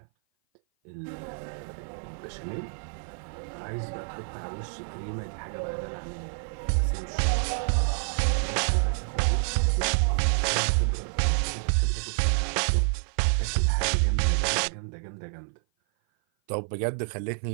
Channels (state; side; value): silent; left; 56 dB below the other